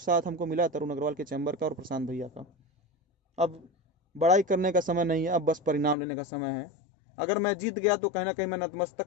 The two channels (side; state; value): right; drops out; at 6.0 s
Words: साथ हमको मिला तरुण अग्रवाल के चैम्बर का और प्रशांत भैया का। अब बड़ाई करने का समय नहीं है, अब बस परिणाम लेने का समय है। अगर मैं जीत गया तो कहीं ना कहीं मैं नतमस्तक